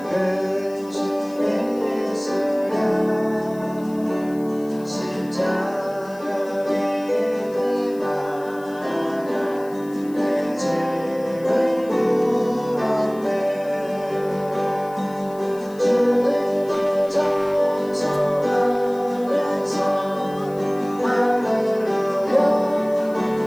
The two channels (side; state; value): left; noise; hiss, 25 dB below the sound